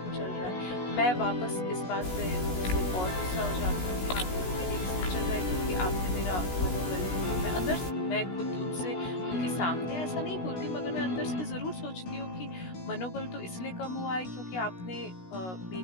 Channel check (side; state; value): right; late; 16 ms